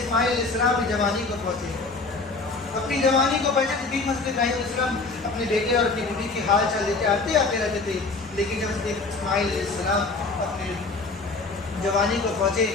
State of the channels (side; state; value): right; quieter; 3.8 dB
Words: علیہ السلام کی جوانی کو پہنچے، اپنی جوانی کو پہنچے تو حضرت ابراہیم علیہ السلام اپنے بیٹے اور اپنی بیوی کی حال چال لیتے آتے رہتے تھے، لیکن جب حضرت اسماعیل علیہ السلام اپنے جوانی کو پہنچے،